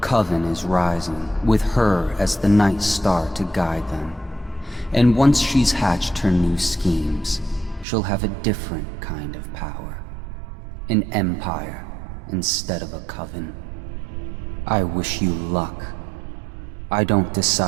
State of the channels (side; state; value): left; drops out; at 7.9 s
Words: is rising, with her as the night star to guide them. And once she's hatched her new schemes, she'll have a different kind of power. An empire instead of a coven. I wish you luck. I don't